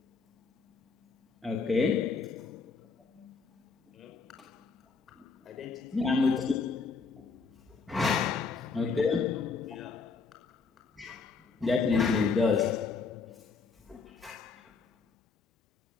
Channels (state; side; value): quieter; right; 4.8 dB